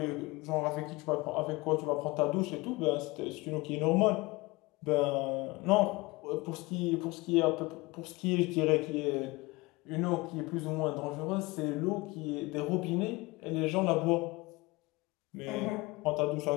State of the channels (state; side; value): quieter; right; 23.0 dB